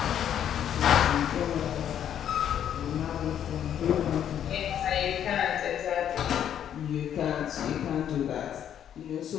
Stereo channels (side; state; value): right; quieter; 9.8 dB